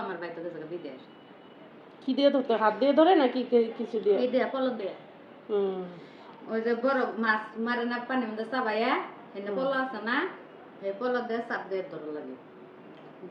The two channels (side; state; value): both; identical; correlation 1.00